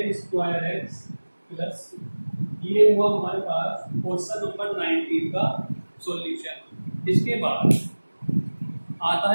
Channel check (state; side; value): inverted; both; correlation -1.00